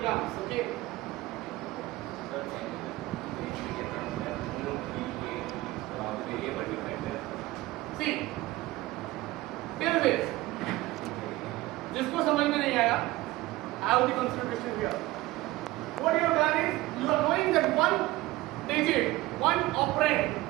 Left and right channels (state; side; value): quieter; left; 18.7 dB